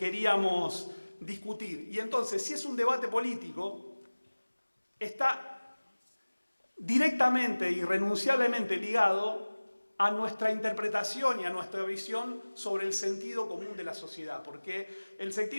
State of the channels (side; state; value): both; inverted; correlation -1.00